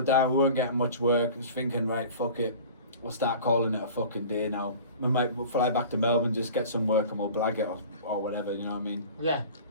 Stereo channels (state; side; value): inverted; both; correlation -0.40